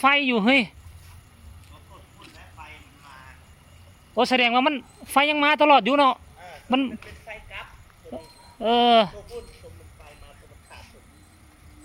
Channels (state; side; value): identical; both; correlation 1.00